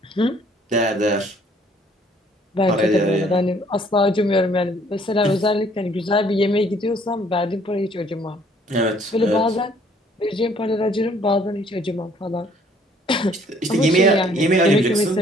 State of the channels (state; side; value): normal; both; correlation 0.61